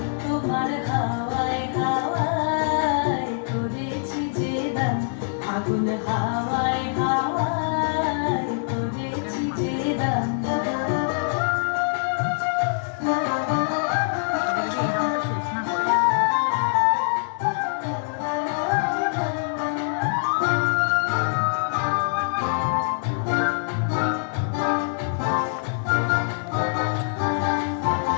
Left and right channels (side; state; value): right; silent; 62 dB below the other